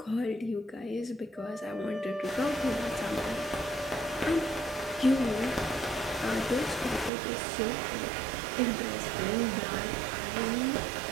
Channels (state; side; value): drops out; left; at 7.1 s